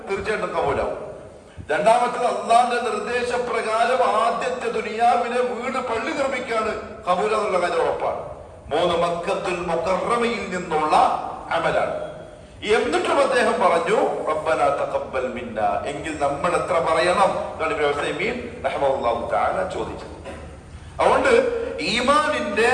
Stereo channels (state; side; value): identical; both; correlation 1.00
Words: തീർച്ചയായിട്ടും കബൂലാവും. രണ്ടാമത്തത് അള്ളാന്റെ നിർദ്ദേശപ്രകാരം ആദ്യത്തെ ദുനിയാവിലെ വീട് പള്ളി നിർമ്മിക്കാണ് കബൂല എന്നുള്ള കാര്യം ഉറപ്പാണ്. മൂന്ന് മക്കത്തുൽ മുകറമയിൽ നിന്നുള്ള അമലാണ്. എന്നിട്ടും അദ്ദേഹം പറഞ്ഞു റബ്ബനാ തഖബ്ബൽ മിന്ന, എങ്കിൽ നമ്മൾ എത്ര പറയണം റഹ്മത്തുള്ളാഹി തആല ചോദിച്ചത്. അതുകൊണ്ട് ഈമാനിന്റെ